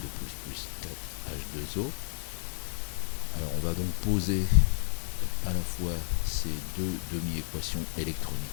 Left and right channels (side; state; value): right; silent; digital silence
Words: plus 4H2O. Alors on va donc poser à la fois ces deux demi-équations